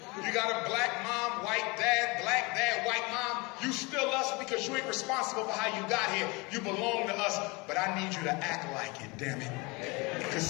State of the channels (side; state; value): right; quieter; 26.5 dB